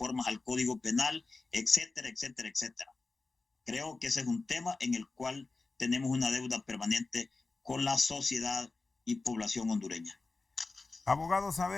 al Código Penal, etcétera, etcétera, etcétera. Creo que ese es un tema en el cual tenemos una deuda permanente con la sociedad y población hondureña. Abogado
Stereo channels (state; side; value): quieter; right; 3.6 dB